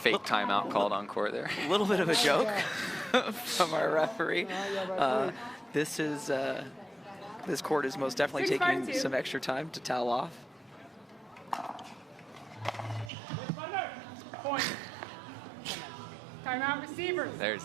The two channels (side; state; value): left; drops out; at 13.1 s